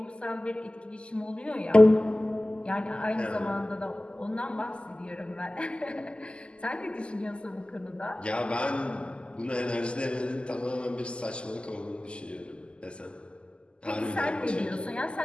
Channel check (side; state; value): right; late; 0.051 ms